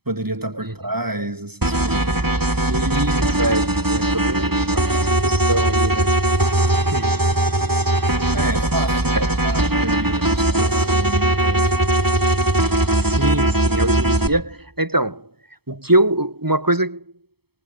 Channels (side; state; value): left; late; 0.97 ms